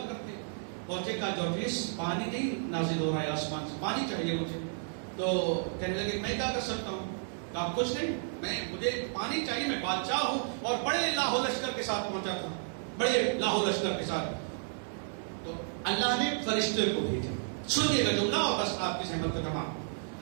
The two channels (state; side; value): silent; left; 56 dB below the other